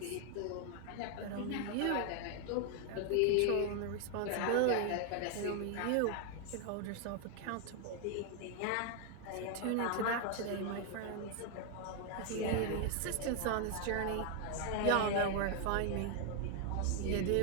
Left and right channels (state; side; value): different; both; correlation 0.00